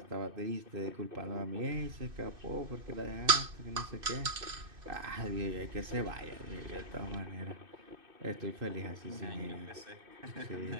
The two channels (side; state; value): left; late; 2.6 ms